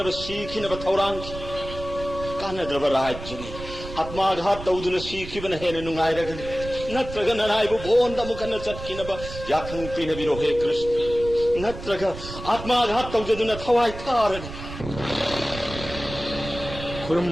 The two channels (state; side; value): noise; right; rumble, 11 dB below the sound